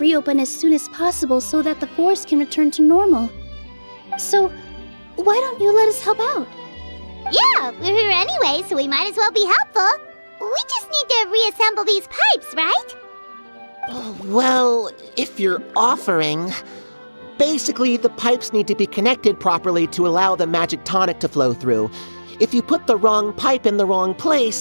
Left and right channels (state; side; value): inverted; both; correlation -1.00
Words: as soon as possible so that the forest can return to normal. So, why don't you let us help out? Yeah, we're here anyway, so we might as well be helpful. We just need to reassemble these pipes, right? Well, if you're offering... Basically, the pipes need to be connected properly to allow the magic tonic to flow through. If you put the wrong pipe in the wrong place,